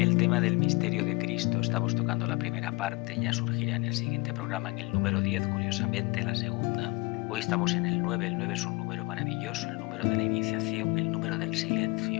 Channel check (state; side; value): quieter; right; 25.8 dB